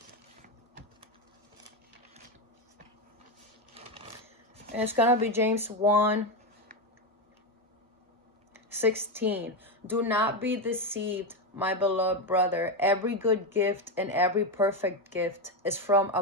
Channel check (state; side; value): normal; both; correlation 0.10